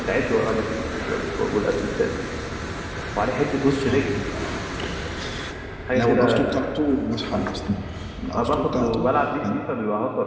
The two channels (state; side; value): identical; both; correlation 1.00